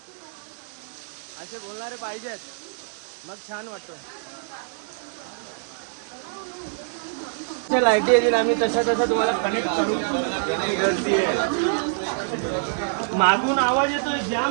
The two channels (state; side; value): silent; left; 59 dB below the other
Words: असे बोलणारे पाहिजेत मग छान वाटतं. लाईटी येतील आम्ही तसा तुम्हाला कनेक्ट करू. गर्दी आहे मागून आवाज येतोय